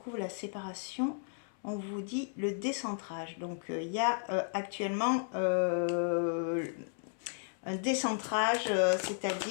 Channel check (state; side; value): silent; right; 55 dB below the other